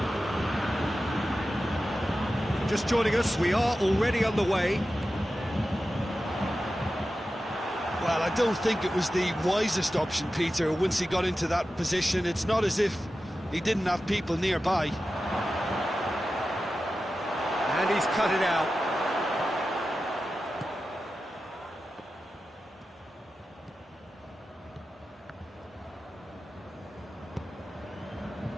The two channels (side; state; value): both; normal; correlation 0.93